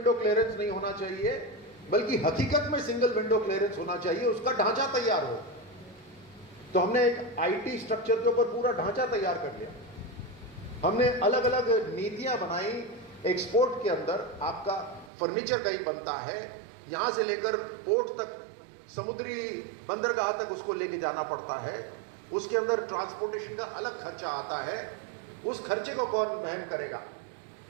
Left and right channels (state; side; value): drops out; left; at 15.1 s